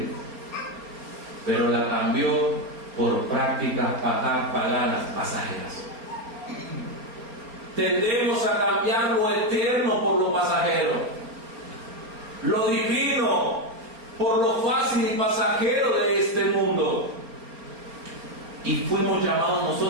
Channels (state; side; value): late; left; 4.3 ms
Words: pero la cambió por prácticas paganas pasajeras. Tendemos a cambiar lo eterno por lo pasajero, lo divino por lo fácil y pasajero de este mundo. Y fuimos llamados